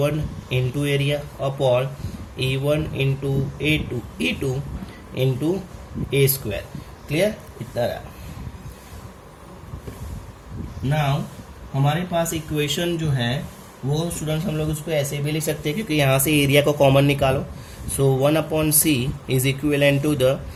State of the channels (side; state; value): both; identical; correlation 1.00